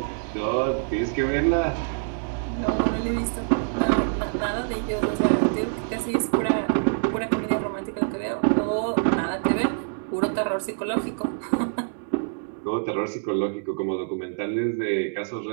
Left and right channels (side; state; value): left; silent; 61 dB below the other